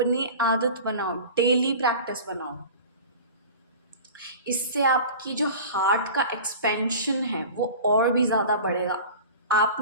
आदत बनाओ, डेली प्रैक्टिस बनाओ। इससे आपकी जो हार्ट का एक्सपेंशन है वो और भी ज़्यादा बढ़ेगा। आप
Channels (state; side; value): inverted; both; correlation -0.38